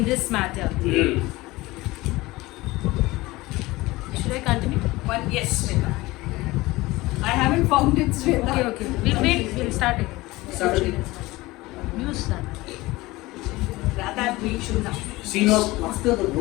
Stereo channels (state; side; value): quieter; right; 20.2 dB